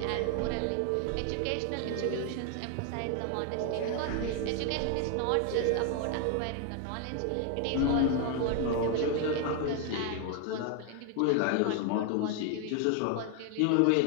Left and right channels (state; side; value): different; both; correlation 0.01